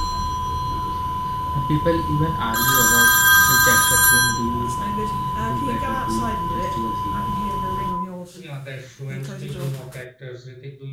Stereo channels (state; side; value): identical; both; correlation 1.00